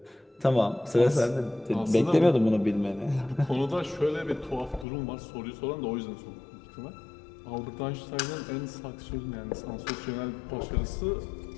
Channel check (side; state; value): right; drops out; at 4.9 s